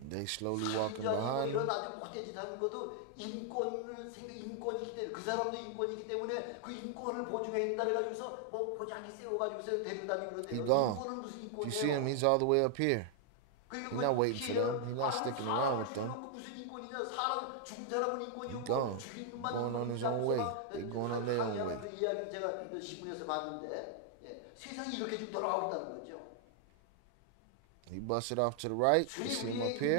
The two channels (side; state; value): both; different; correlation 0.00